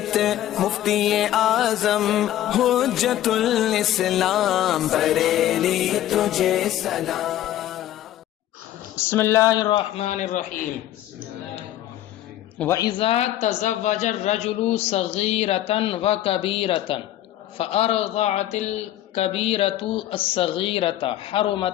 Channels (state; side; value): quieter; right; 13.0 dB